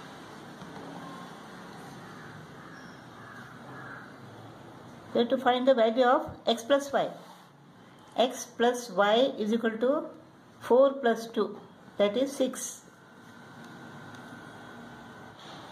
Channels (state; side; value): identical; both; correlation 1.00